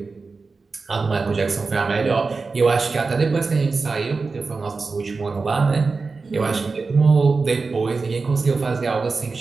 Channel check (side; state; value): left; quieter; 4.2 dB